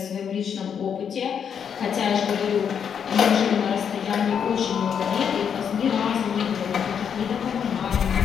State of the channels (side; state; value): right; quieter; 7.6 dB